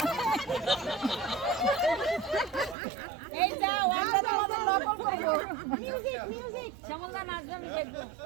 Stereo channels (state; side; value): drops out; left; at 2.8 s